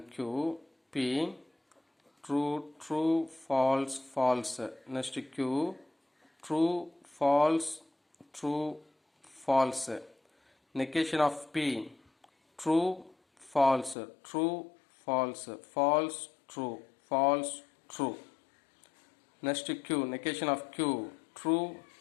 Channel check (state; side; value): drops out; right; at 14.0 s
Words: Q. P true true false false. Next Q true false true false. Negation of P true false true false false true false true. Next Q negation of Q true